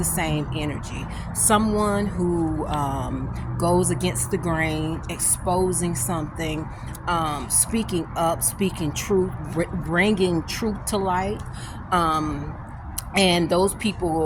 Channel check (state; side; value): identical; both; correlation 1.00